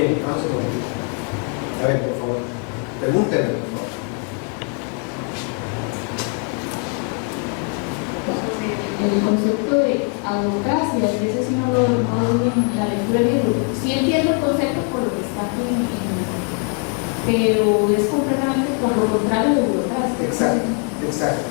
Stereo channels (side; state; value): right; quieter; 36.3 dB